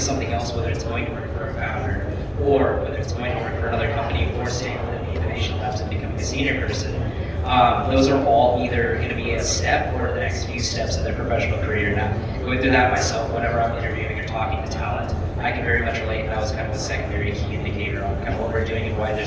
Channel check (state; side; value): identical; both; correlation 1.00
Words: something else, whether it's going to work for a founder or whether it's going to work for another company or staying within the innovation labs and becoming a senior person, those are all either going to be a step or the next few steps in their professional career. Now, going through that myself, whenever I'm interviewing or talking to talent, I can very much relate. That was kind of the secondary key indicator on kind of what we're doing and why